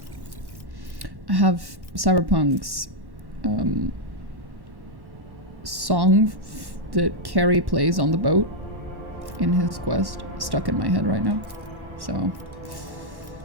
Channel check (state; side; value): late; left; 1.1 ms